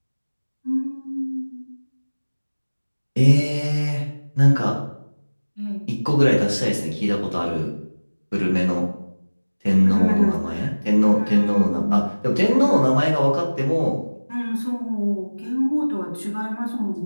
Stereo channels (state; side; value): inverted; both; correlation -1.00